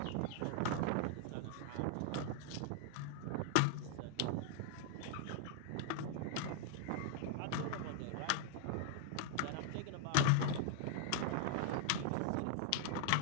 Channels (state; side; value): different; both; correlation 0.00